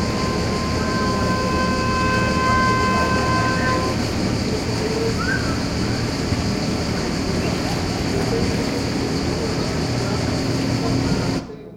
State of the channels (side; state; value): both; identical; correlation 1.00